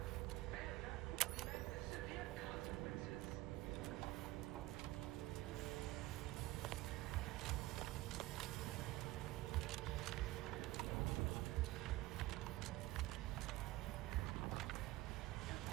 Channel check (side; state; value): left; quieter; 17.8 dB